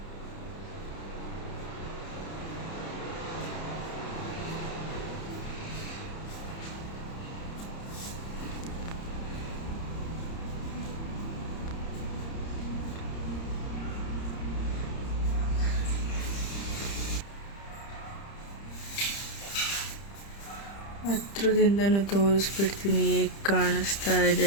ಹತ್ರದಿಂದನೂ ತೋರಿಸ್ಬಿಡ್ತೀನಿ ಹೇಗೆ ಕಾಣಿಸ್ತಾ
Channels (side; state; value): right; late; 30 ms